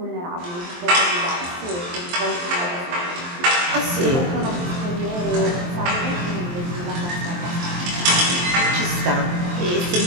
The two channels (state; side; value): late; left; 23 ms